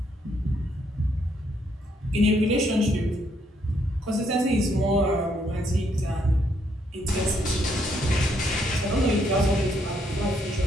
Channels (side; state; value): both; normal; correlation 0.72